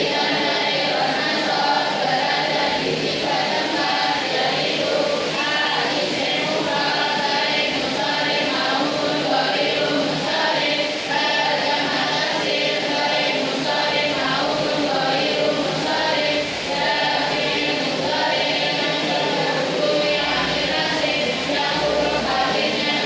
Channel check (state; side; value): identical; both; correlation 1.00